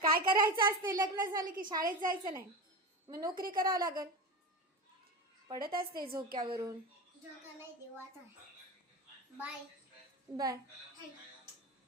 काय करायचं असते लग्न झालं की शाळेत जायचं नाही. मग नोकरी करावं लागल. पडत असते झोक्यावरून. झोका नाही देवाचा. Bye bye.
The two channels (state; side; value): normal; both; correlation 0.24